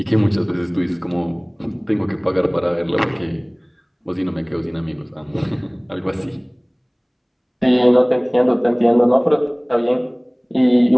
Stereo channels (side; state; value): both; identical; correlation 1.00